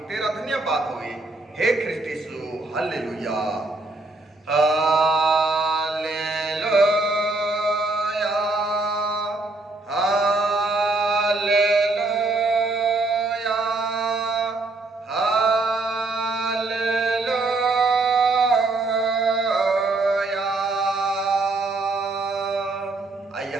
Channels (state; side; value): quieter; left; 3.2 dB